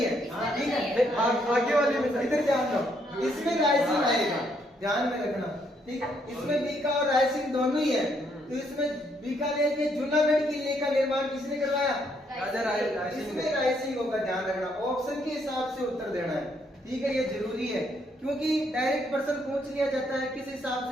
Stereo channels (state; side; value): normal; both; correlation 0.72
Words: है, ठीक है। आगे वाले में इधर ध्यान दो, इसमें रायसिंह आएगा, ध्यान में रखना, ठीक है। इसमें बीका और रायसिंह दोनों ही है। तो इसमें बीकानेर के जूनागढ़ किले का निर्माण किसने करवाया? राजा रायसिंह। इसमें रायसिंह होगा, ध्यान रखना। ऑप्शन के हिसाब से उत्तर देना है, ठीक है, ये जरूरी है, क्योंकि डायरेक्ट प्रश्न पूछ लिया जाता है किस हिसाब